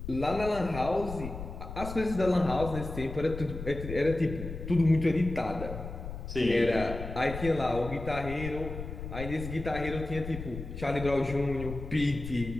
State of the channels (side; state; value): left; noise; rumble, 8 dB below the sound